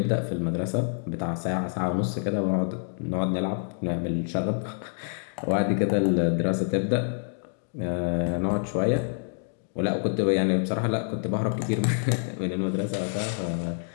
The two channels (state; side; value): silent; right; digital silence